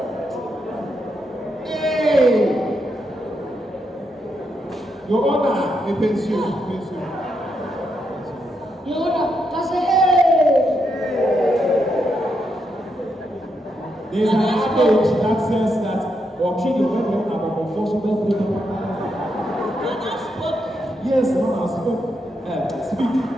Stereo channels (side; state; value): both; normal; correlation 0.81